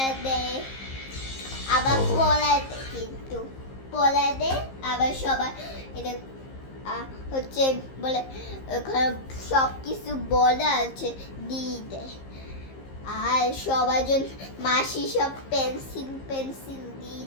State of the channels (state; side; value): late; right; 15 ms